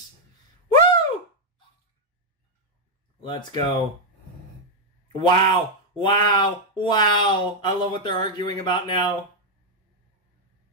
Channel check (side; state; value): both; normal; correlation -0.02